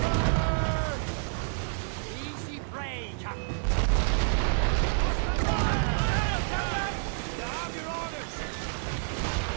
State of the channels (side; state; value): left; silent; 59 dB below the other